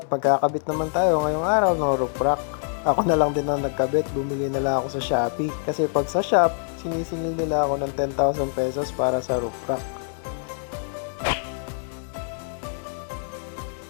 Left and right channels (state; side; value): silent; right; 62 dB below the other